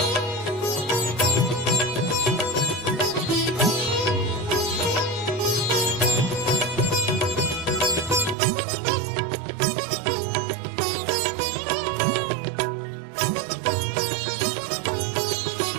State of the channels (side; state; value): left; drops out; at 8.3 s